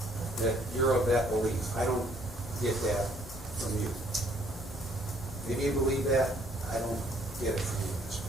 you're of that belief. I don't get that from you. Maybe you believe that. I don't get it from you at this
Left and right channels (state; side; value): normal; both; correlation 0.63